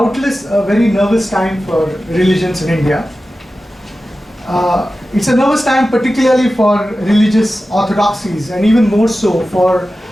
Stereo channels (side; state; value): both; normal; correlation 0.94